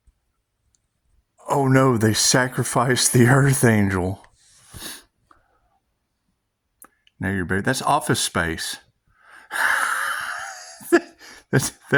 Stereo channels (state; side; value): identical; both; correlation 1.00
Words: Oh no, they sacrificed the Earth Angel. Now you're buried. That's Office Space.